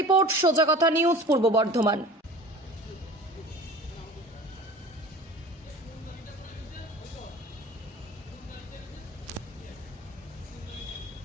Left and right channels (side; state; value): both; normal; correlation 0.40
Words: সোজা কথা নিউজ, পূর্ব বর্ধমান।